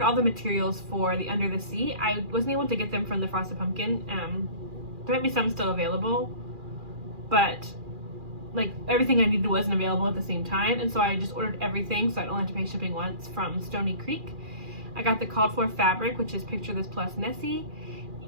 all the materials for the Under the Sea. I wasn't able to get them from the Frosted Pumpkin. There might be some still available, but like everything I needed wasn't available at the same time, and so I just ordered everything so I don't have to pay shipping once from Stony Creek. I got the called for fabric, which is Picture This plus Nessie,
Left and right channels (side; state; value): left; late; 2.4 ms